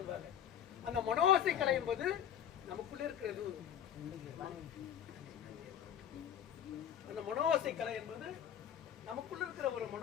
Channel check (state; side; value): quieter; right; 9.6 dB